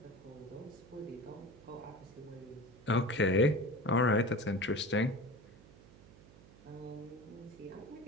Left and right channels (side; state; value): right; noise; hum, 22 dB below the sound